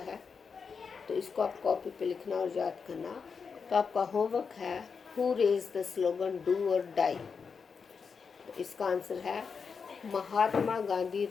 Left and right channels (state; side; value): quieter; right; 5.6 dB